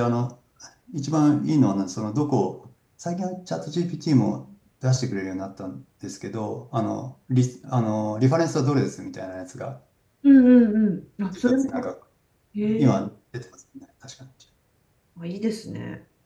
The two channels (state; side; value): identical; both; correlation 1.00